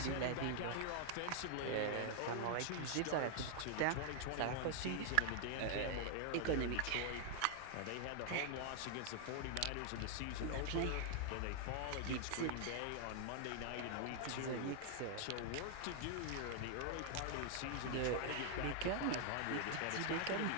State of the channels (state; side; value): different; both; correlation 0.00